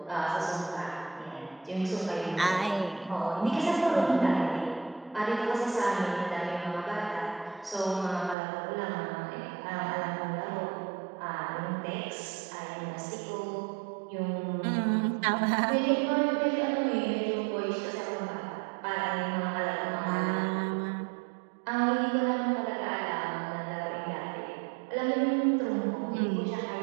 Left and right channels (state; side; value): drops out; left; at 8.3 s